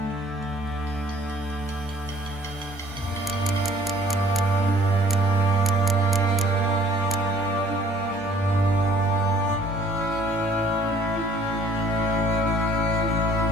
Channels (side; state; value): both; normal; correlation 0.56